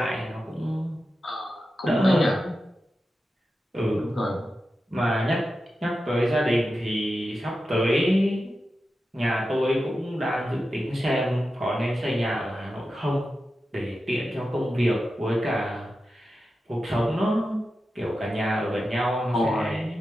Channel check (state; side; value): normal; both; correlation 0.91